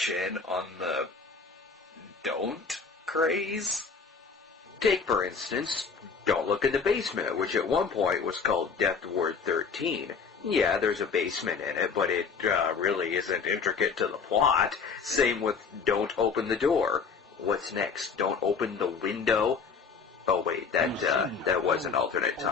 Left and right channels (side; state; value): right; quieter; 5.5 dB